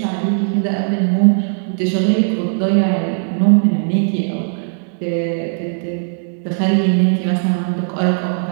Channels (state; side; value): silent; left; digital silence